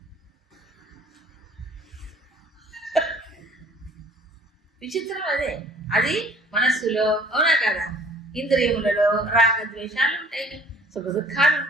విచిత్రం అదే. అది మనస్సులో, అవునా కదా? ఇంద్రియములలో రాగద్వేషాలు ఉంటాయి, సుఖ దుఃఖాలు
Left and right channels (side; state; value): both; normal; correlation 0.53